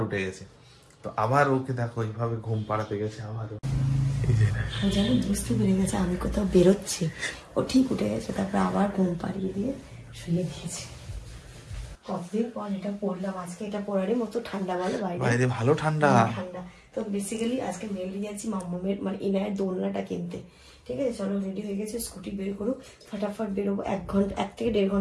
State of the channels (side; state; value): both; identical; correlation 1.00